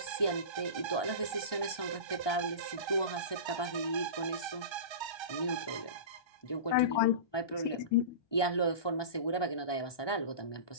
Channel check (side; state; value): right; late; 1.2 ms